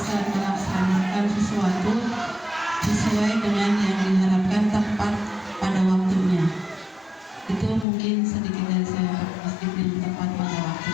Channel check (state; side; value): drops out; right; at 7.9 s